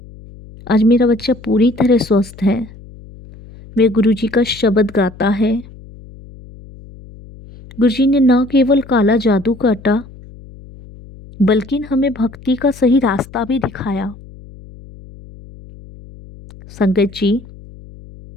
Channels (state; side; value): noise; left; hum, 20 dB below the sound